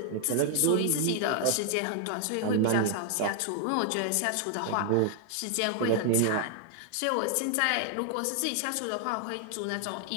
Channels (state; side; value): different; both; correlation 0.00